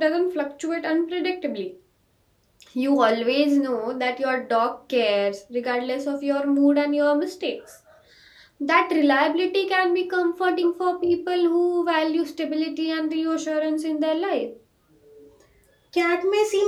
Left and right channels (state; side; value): identical; both; correlation 1.00